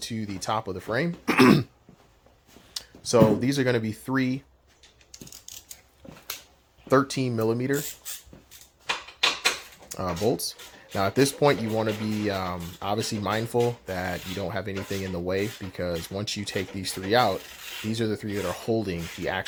the top of the frame. So these are going to be 3 13 millimeter bolts. Now at this point, you want to be obviously mindful that you don't have anything in the way, because once you take these 3 out, these are the 3 that are holding the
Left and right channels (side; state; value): both; identical; correlation 1.00